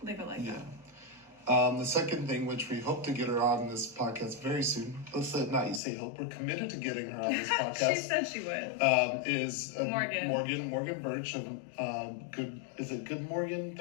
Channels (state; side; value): drops out; right; at 5.8 s